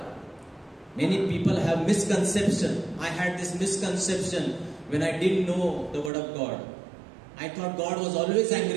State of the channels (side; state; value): left; drops out; at 6.1 s